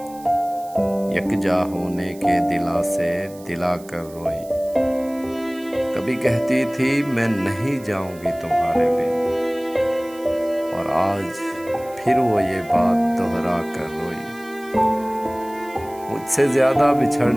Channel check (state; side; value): noise; right; hiss, 22 dB below the sound